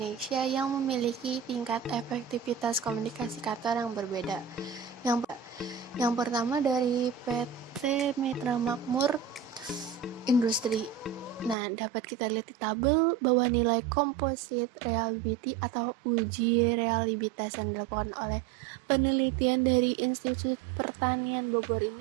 yang memiliki tingkat efektivitas komunikasi kantor yang berbeda. Yang pertama dari PT Mitra Makmur Industri. Nah, dapat kita lihat di tabel bahwa nilai composite reliability atau uji reliabilitas yang dilakukan oleh penelitian dari Institut Pertanian Bogor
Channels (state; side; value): drops out; left; at 11.6 s